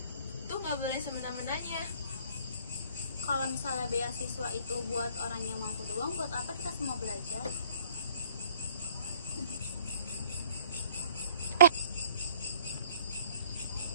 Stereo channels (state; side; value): inverted; both; correlation -0.57